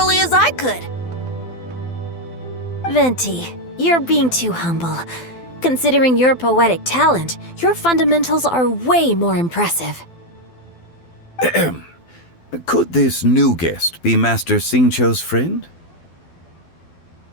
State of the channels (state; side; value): late; right; 12 ms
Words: as I could. Venti, you're being too humble. Considering your poetic talent, your fundamentals are way more impressive. Could this new guest be Master Xingqiu's friend?